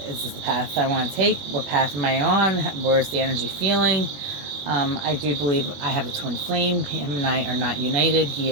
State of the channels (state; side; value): late; left; 21 ms